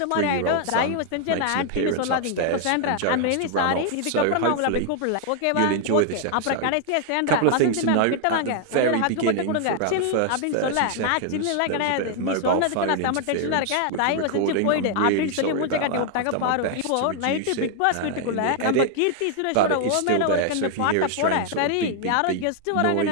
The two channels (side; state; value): both; different; correlation 0.00